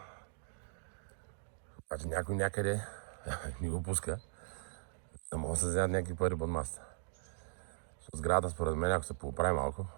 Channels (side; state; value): left; silent; digital silence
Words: Обаче някой някъде ни го пуска. Да могат да се вземат някакви пари под масата. Сградата, според мен, ако се поправи малко,